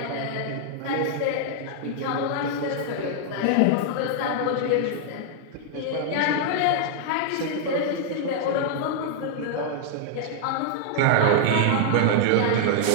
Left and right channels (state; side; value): different; both; correlation 0.00